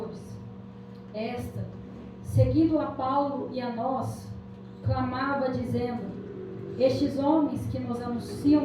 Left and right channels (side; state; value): both; identical; correlation 1.00